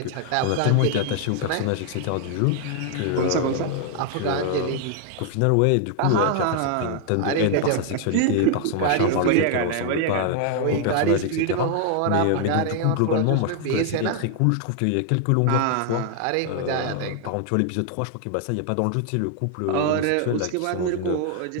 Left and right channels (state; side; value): different; both; correlation 0.00